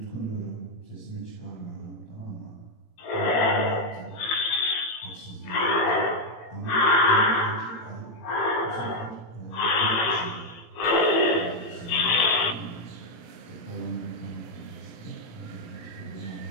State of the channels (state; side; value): late; right; 17 ms